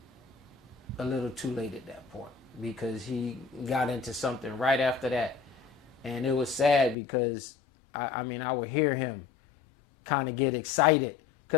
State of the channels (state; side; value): drops out; right; at 7.0 s